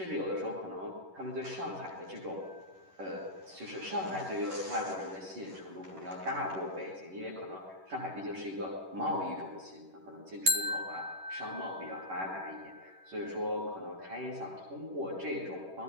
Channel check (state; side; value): late; left; 11 ms